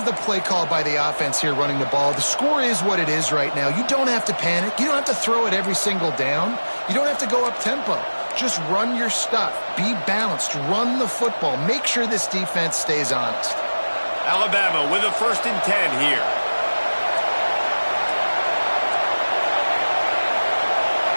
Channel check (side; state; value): both; inverted; correlation -1.00